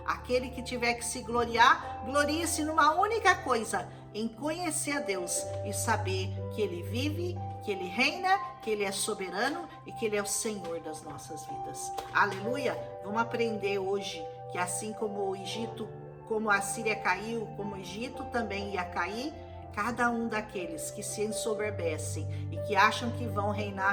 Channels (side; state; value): both; identical; correlation 1.00